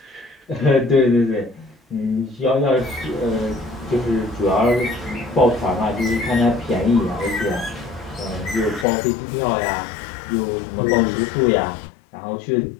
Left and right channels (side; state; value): right; drops out; at 8.8 s